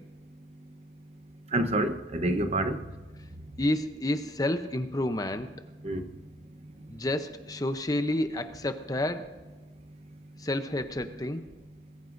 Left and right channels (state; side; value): normal; both; correlation 0.63